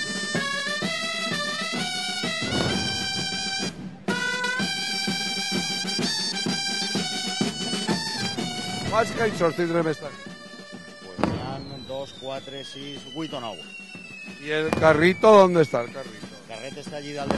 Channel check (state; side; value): identical; both; correlation 1.00